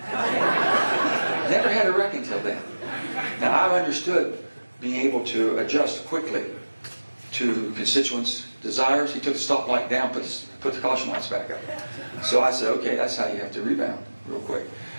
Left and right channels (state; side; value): inverted; both; correlation -1.00